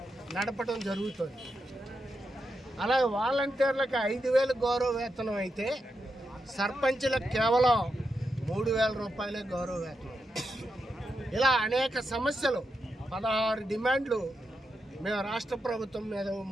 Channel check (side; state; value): both; normal; correlation 0.86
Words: నడపడం జరుగుతుంది. అలాగే వాలంటీర్లకు 5,000 గౌరవ వేతనం అయితే సర్పంచులకు కేవలం 3,000 రూపాయలే గౌరవ వేతనం. ఇలా అనేక సమస్యలు, 16 డిమాండ్లు మేము రాష్ట్ర ప్రభుత్వం మీద